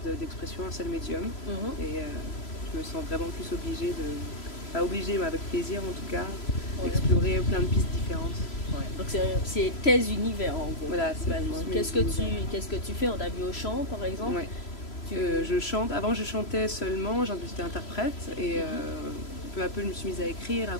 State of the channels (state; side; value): late; right; 3.0 ms